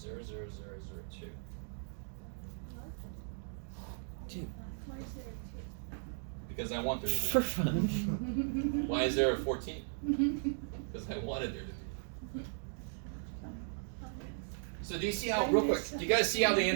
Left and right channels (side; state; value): left; silent; digital silence